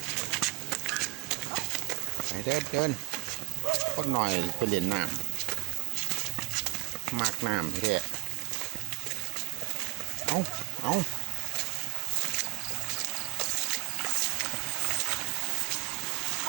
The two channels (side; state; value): left; quieter; 22.9 dB